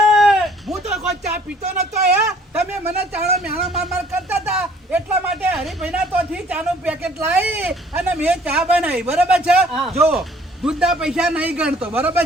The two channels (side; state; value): both; normal; correlation 0.57